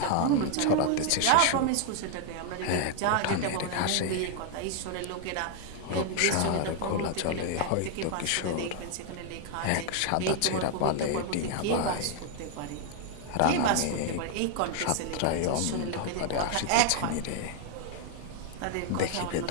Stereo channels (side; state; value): both; different; correlation 0.00